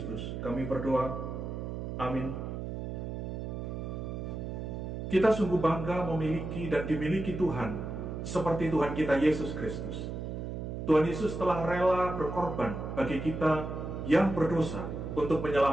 kami berdoa. Amin. Kita sungguh bangga memiliki dan dimiliki Tuhan seperti Tuhan kita Yesus Kristus. Tuhan Yesus telah rela berkorban bagi kita yang berdosa untuk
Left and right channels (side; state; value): right; noise; hum, 5 dB below the sound